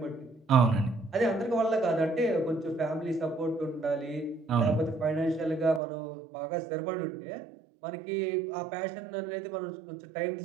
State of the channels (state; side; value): drops out; left; at 5.8 s